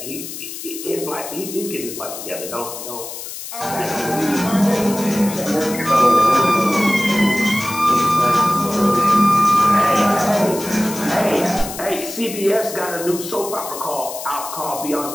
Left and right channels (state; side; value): noise; left; hiss, 10 dB below the sound